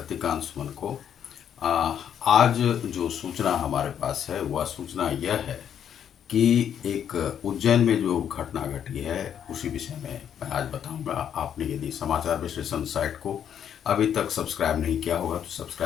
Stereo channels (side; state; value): right; quieter; 9.0 dB